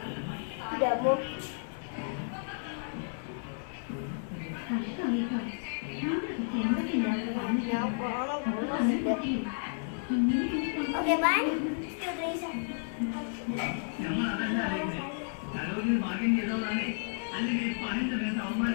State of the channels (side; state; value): right; silent; 56 dB below the other